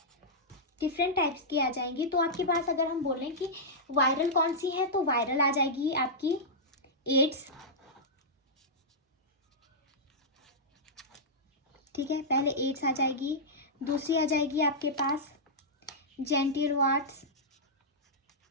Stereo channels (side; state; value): both; normal; correlation -0.10